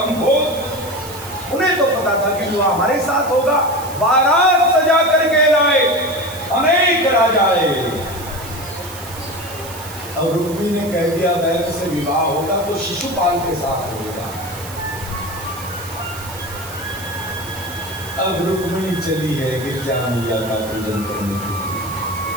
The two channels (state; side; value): noise; right; hiss, 14 dB below the sound